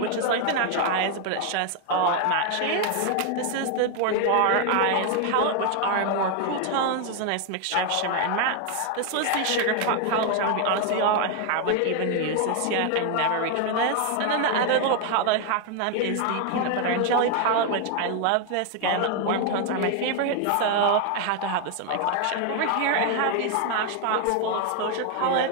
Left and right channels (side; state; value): both; different; correlation 0.01